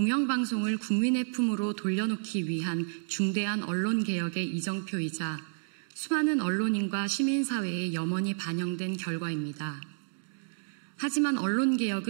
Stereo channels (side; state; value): left; silent; digital silence